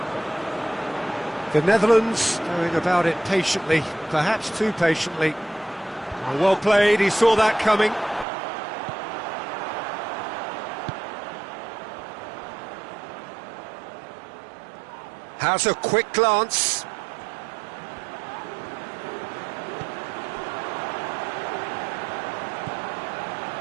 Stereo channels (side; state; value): left; drops out; at 8.2 s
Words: The Netherlands going about it patiently, perhaps too patiently. Well played, he saw that coming. Has a quick glance.